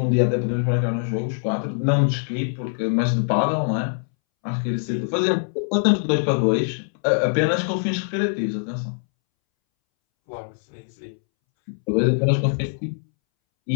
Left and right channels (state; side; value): silent; right; 63 dB below the other